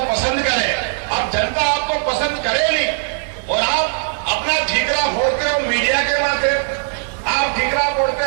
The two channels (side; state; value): left; silent; digital silence